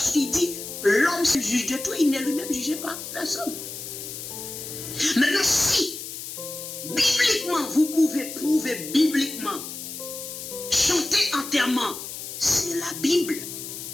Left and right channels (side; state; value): left; noise; hiss, 9 dB below the sound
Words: qu'il dit, l'homme se juge de tout, il n'est lui-même jugé par personne. Maintenant, si, bibliquement, vous pouvez prouver bibliquement, chanter enterrement, c'est la Bible.